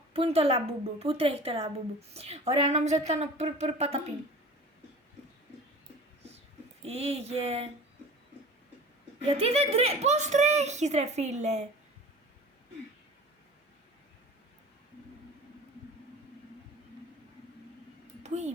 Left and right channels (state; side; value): normal; both; correlation 0.40